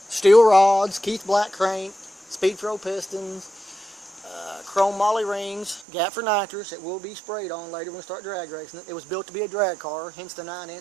Steel rods, Keith Black crank, Speed Pro pistons, chrome moly rings, gap for nitrous. It will be sprayed on later when we start drag racing it. It was built to be a drag car, hence the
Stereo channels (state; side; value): drops out; left; at 5.9 s